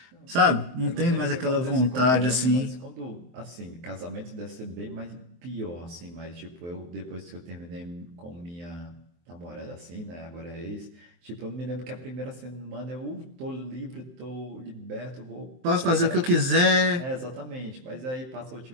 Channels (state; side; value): late; left; 23 ms